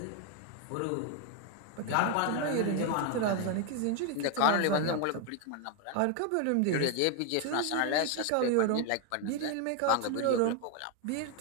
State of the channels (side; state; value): both; different; correlation 0.01